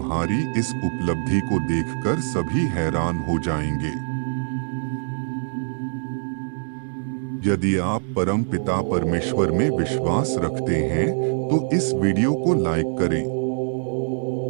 इस उपलब्धि को देखकर सभी हैरान हो जाएंगे। यदि आप परम पिता परमेश्वर में विश्वास रखते हैं तो इस वीडियो को लाइक करें।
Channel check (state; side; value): silent; left; digital silence